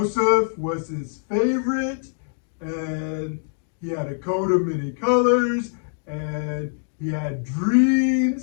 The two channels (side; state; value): right; silent; digital silence